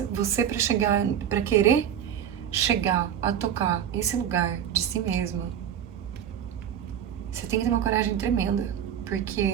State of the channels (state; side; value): quieter; left; 9.5 dB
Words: você pra querer chegar a tocar esse lugar de si mesmo, você tem que ter uma coragem tremenda,